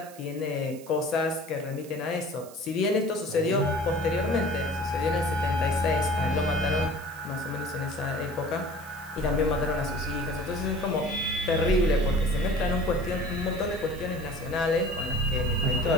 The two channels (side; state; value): right; noise; hiss, 20 dB below the sound